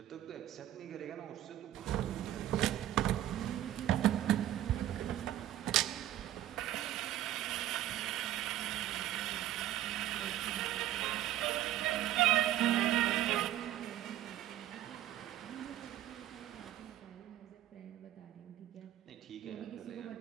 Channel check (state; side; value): quieter; left; 12.9 dB